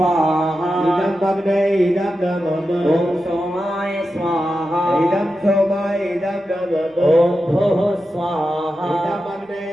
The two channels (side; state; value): both; normal; correlation 0.90